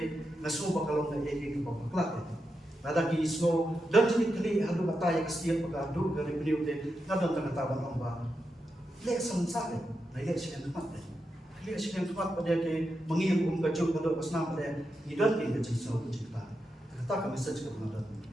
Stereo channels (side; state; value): both; normal; correlation 0.87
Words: ngaso bakalong na egi baklak. Ada ki ismo dan jenis kali hadu kata yang setiap pagadu dari beliau de ngadon tangataban ong ba. Le samsale na ye siyan tumat. Le siyan tumat pada ke mengilum kacau pada pasna pada idan ke jenis so cerita. Kata kami saja kepada